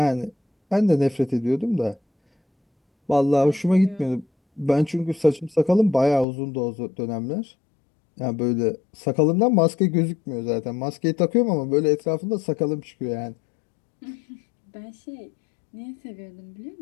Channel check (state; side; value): drops out; right; at 6.2 s